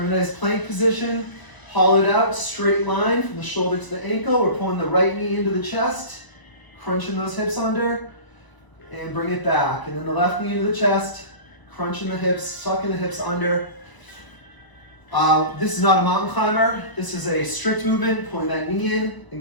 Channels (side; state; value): right; late; 1.0 ms